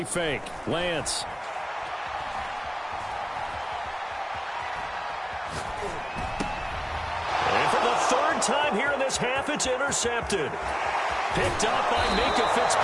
fake. Lance. And for the 3rd time here in this half, it's intercepted. Picked up by Minkah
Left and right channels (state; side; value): identical; both; correlation 1.00